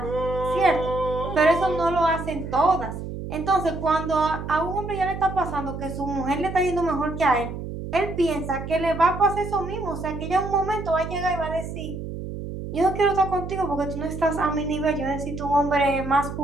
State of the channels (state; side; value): noise; right; hum, 8 dB below the sound